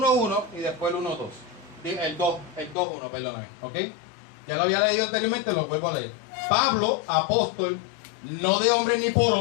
y después el 1.2. El 2.1, perdóname. ¿Ok? Ya lo había leído anteriormente, lo vuelvo a leer. Pablo, apóstol, no de hombre ni por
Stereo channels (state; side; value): drops out; right; at 2.8 s